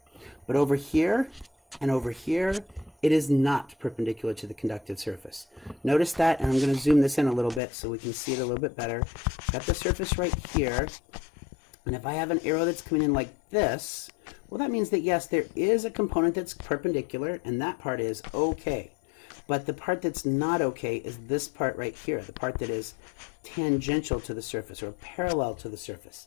But over here and over here it is not perpendicular to the conductive surface. Notice that, and I'm going to zoom this in a little bit so we can see it a little bit better. Got the surface right here, and if I have an arrow that's coming in like this, well, that means that yes, there is a component that's perpendicular, and that part is okay. But the part that's not okay is this part right here, the part that is tangential to the surface or parallel to the surface.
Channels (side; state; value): right; drops out; at 7.6 s